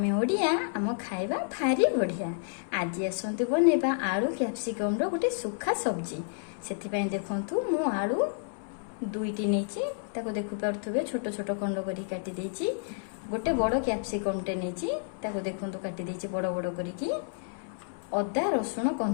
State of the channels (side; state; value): right; silent; 58 dB below the other